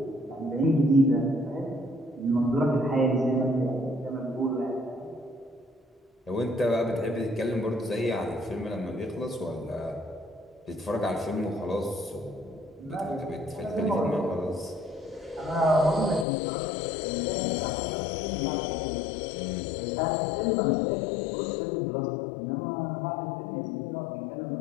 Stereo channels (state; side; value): drops out; right; at 16.2 s